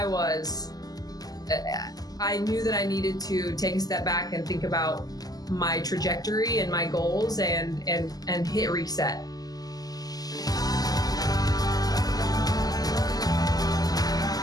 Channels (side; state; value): right; late; 0.18 ms